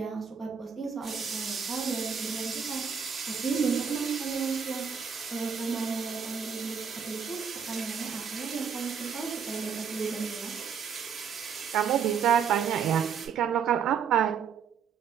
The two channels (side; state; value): left; quieter; 7.0 dB